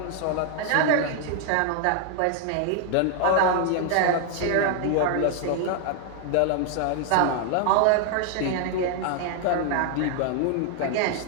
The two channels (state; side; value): different; both; correlation 0.00